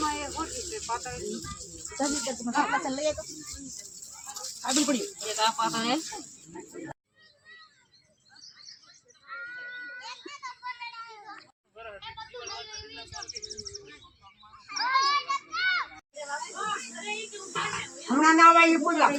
એ ઓછી છે પાતળી જલ્દી કે તમે પાછળ લઈ આવો આડી પડી એક આ પાતળ હે હમણાં ના આવે એ પૂજા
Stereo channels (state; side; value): identical; both; correlation 1.00